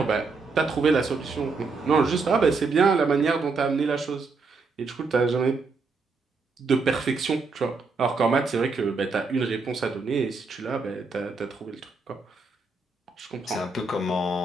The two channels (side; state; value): left; quieter; 4.1 dB